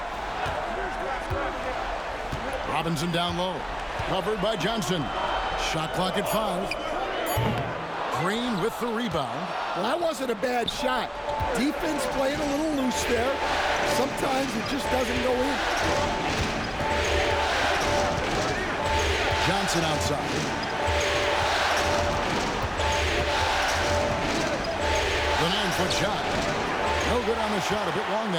Robinson down low. Covered by Johnson. Shot clock at 5. Green with the rebound. Well, that wasn't a bad shot. Defense playing a little loose there. Sometimes it just doesn't go in. Johnson outside. The 9-foot shot. No good on the shot. A bit long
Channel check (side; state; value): both; identical; correlation 1.00